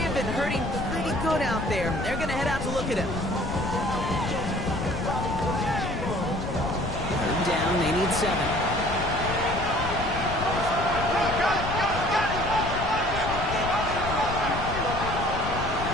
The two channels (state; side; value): noise; left; rumble, 6 dB below the sound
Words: hurting pretty good out there. They're going to head out to look at him. Third down, they need 7.